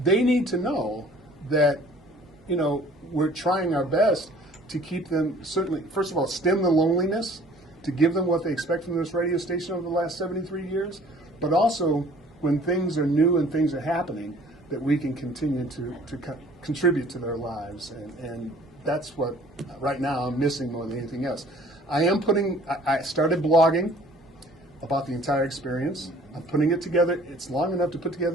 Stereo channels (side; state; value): both; normal; correlation 0.53